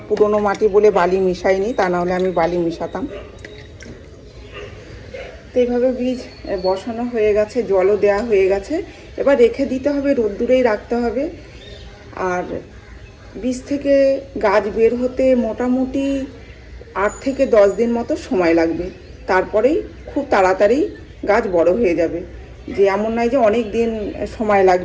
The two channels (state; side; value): identical; both; correlation 1.00